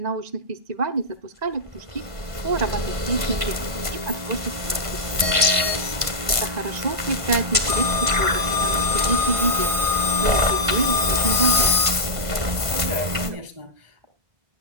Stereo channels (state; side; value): late; left; 1.5 ms